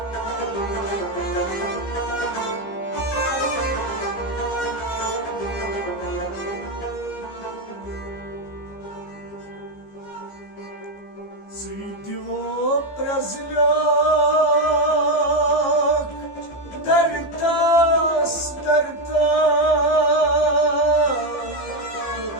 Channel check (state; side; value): late; right; 15 ms